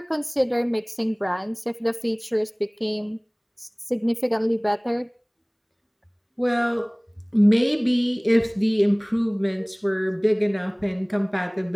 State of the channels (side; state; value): both; identical; correlation 1.00